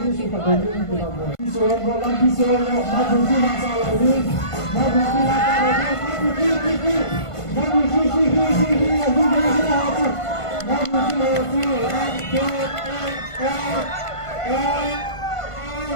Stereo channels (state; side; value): late; right; 1.5 ms